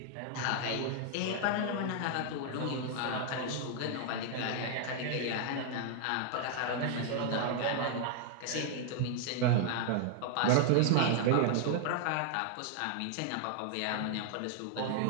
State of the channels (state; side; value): different; both; correlation 0.00